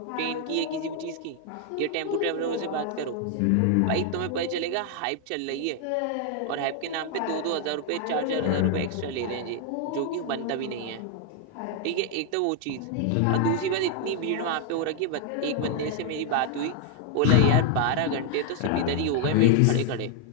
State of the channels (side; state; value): both; different; correlation 0.00